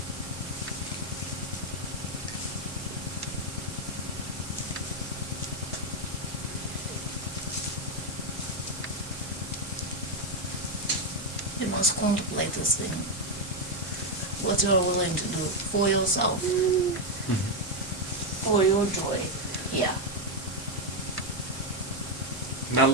You must contemplate this thing. What you're willing to do for yourself, for your joy. Yeah. Now,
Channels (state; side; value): normal; both; correlation 0.04